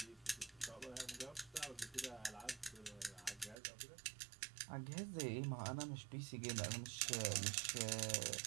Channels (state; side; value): drops out; left; at 3.6 s